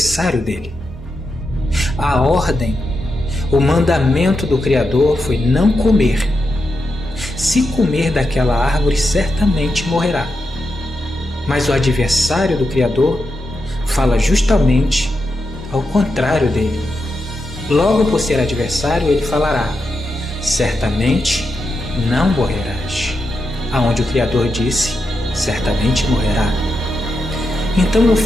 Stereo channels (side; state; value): both; normal; correlation 0.86